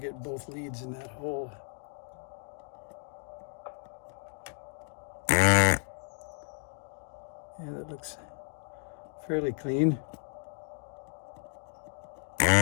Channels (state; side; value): silent; right; 56 dB below the other